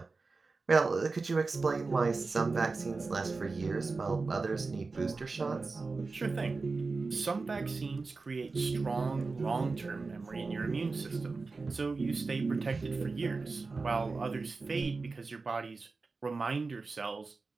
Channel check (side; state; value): left; quieter; 4.0 dB